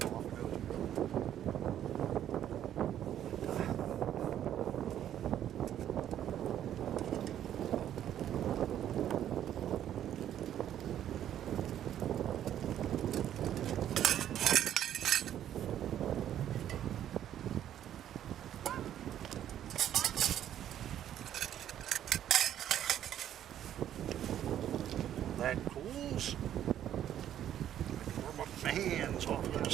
That cools. I can warm up my hands off of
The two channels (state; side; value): quieter; left; 10.9 dB